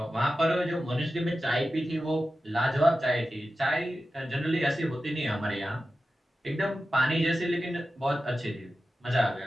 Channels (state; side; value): normal; both; correlation 0.93